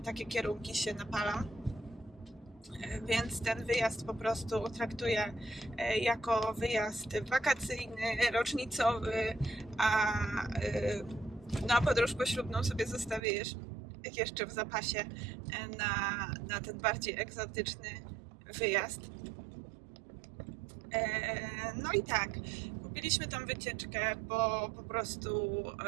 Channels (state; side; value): drops out; left; at 13.2 s